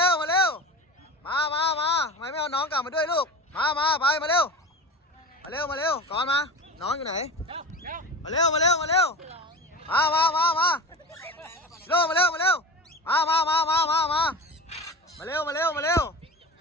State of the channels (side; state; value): both; normal; correlation 0.30